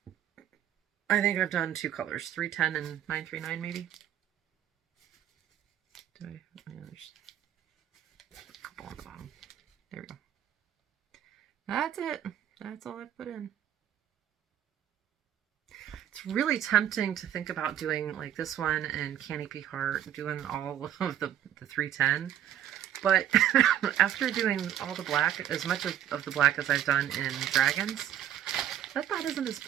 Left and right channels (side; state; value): left; quieter; 10.8 dB